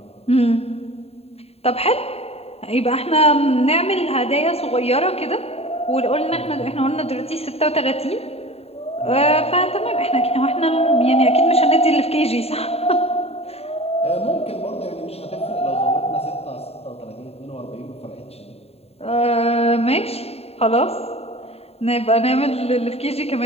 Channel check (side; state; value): right; late; 0.29 ms